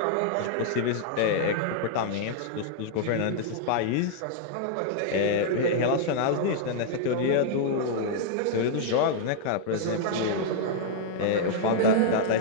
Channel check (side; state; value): both; different; correlation -0.01